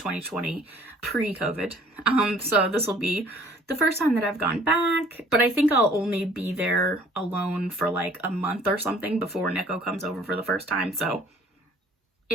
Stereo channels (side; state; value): both; normal; correlation 0.54